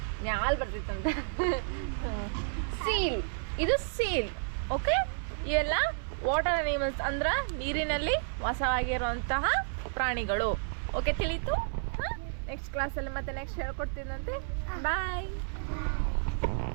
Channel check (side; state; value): left; silent; 57 dB below the other